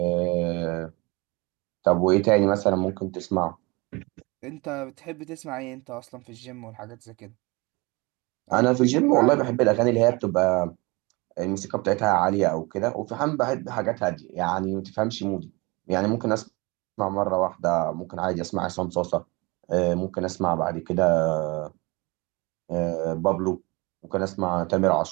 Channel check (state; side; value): quieter; left; 25.7 dB